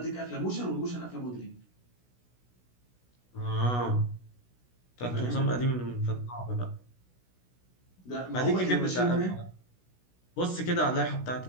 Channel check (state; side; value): late; right; 16 ms